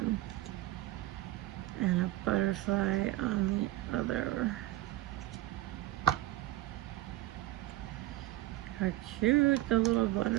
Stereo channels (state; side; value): quieter; left; 16.3 dB